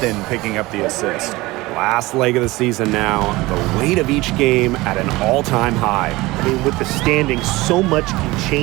picking up the assist. Last leg of the season now, the weight of each game at an all-time high. I mean, with the standings, so much can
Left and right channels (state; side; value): quieter; left; 20.5 dB